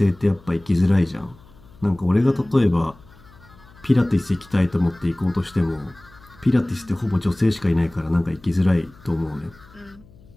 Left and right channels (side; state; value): left; noise; hum, 25 dB below the sound